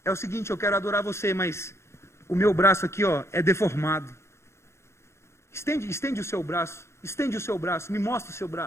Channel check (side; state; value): right; late; 0.13 ms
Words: é o seguinte, eu quero adorar você, mas o meu braço aqui, é deformado. Estende o seu braço, me mostra o seu